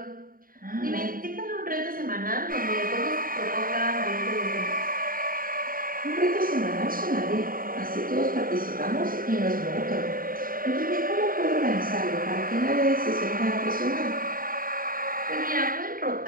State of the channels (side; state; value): left; late; 0.41 ms